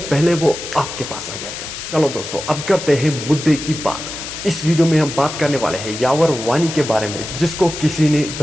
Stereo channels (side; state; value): left; noise; hiss, 8 dB below the sound